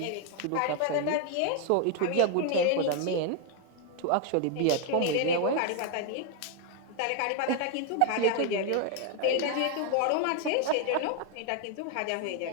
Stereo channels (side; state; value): both; different; correlation 0.00